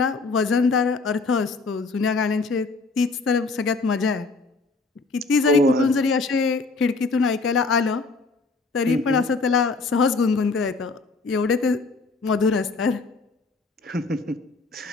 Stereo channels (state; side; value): quieter; right; 3.9 dB